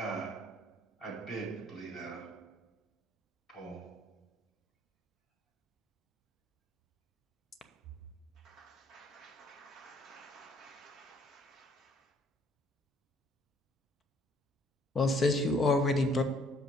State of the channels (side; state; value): both; normal; correlation 0.62